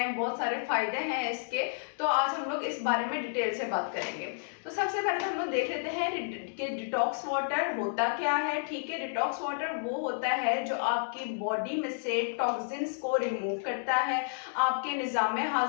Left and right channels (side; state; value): right; silent; digital silence